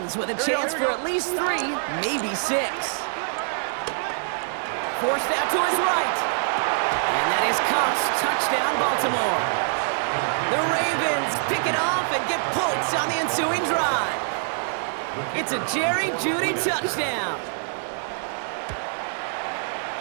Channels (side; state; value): left; silent; digital silence